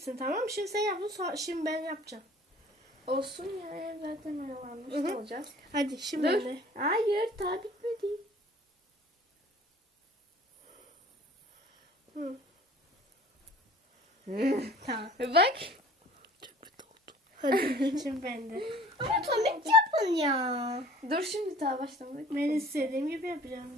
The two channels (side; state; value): both; normal; correlation 0.49